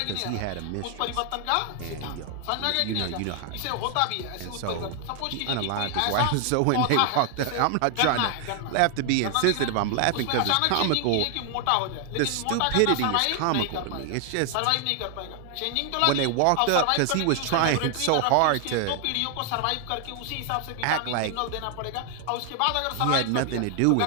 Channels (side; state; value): both; different; correlation 0.00